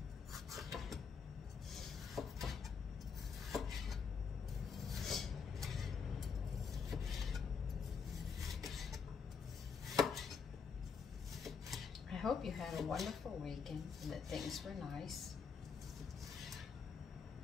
I hope you had a wonderful weekend and that things were nice.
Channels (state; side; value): quieter; right; 5.9 dB